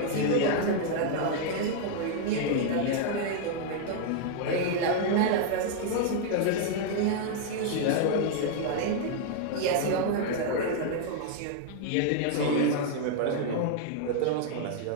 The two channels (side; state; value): both; different; correlation 0.00